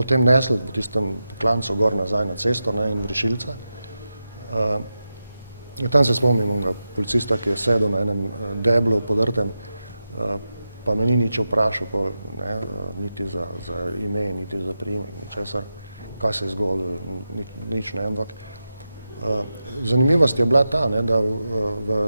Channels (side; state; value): both; inverted; correlation -0.90